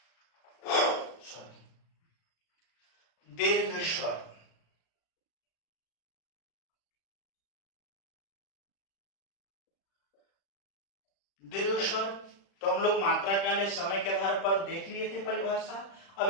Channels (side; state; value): right; late; 36 ms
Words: सॉरी, दीर्घ स्वर। दीर्घ स्वर तो हम लोग मात्रा काल या समय के आधार पर देख लिए थे परिभाषा। अब